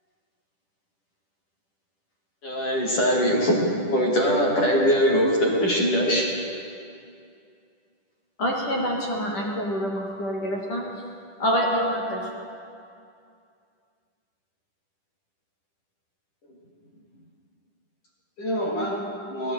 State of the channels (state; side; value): late; right; 10 ms